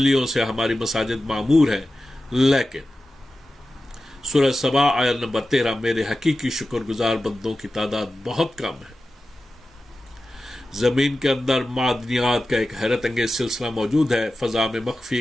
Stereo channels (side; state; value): both; normal; correlation 0.94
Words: سے ہماری مساجد معمور ہے، لیکن سورہ سبا آیت نمبر 13 میرے حقیقی شکر گزار بندوں کی تعداد بہت کم ہے۔ زمین کے اندر معدنیات کا ایک حیرت انگیز سلسلہ موجود ہے۔ فضا میں